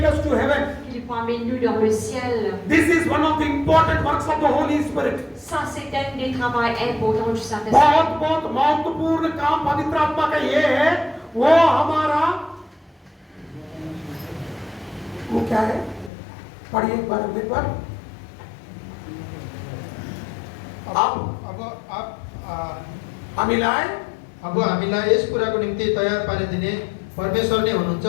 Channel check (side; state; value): right; drops out; at 16.1 s